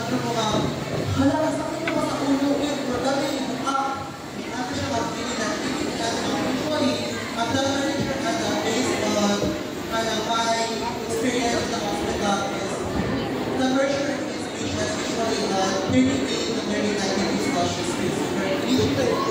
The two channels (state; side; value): identical; both; correlation 1.00